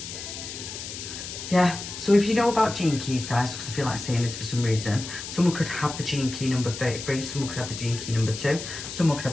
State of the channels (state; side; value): noise; left; hiss, 9 dB below the sound